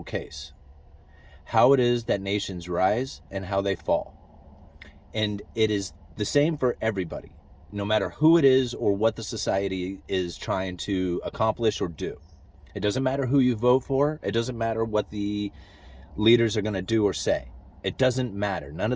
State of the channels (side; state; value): both; identical; correlation 1.00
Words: case, how it is that nations rise and how they fall. And it is the same for everybody, no matter who it is or what the society is trying to accomplish or do. It doesn't matter who you vote for. It doesn't matter what the leaders are going to do or say. It doesn't matter. None